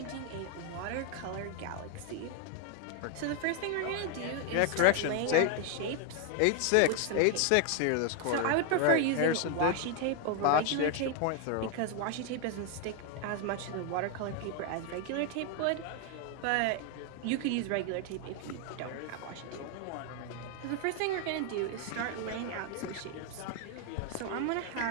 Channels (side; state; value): both; different; correlation 0.01